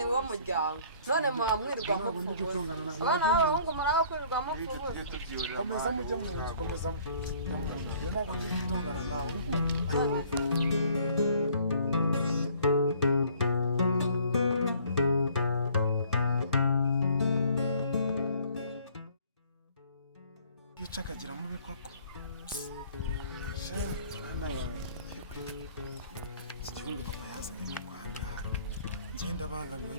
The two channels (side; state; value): both; inverted; correlation -0.57